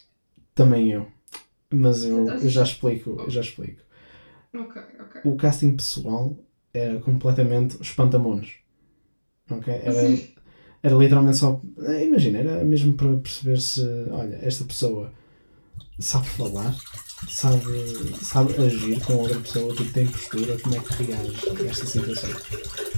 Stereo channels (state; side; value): inverted; both; correlation -1.00